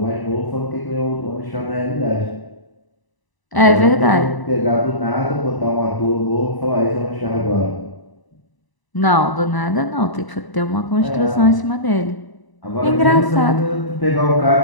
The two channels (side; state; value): right; late; 1.0 ms